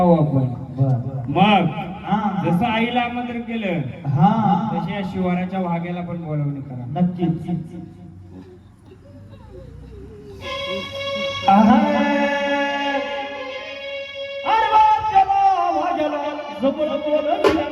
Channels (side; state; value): both; identical; correlation 1.00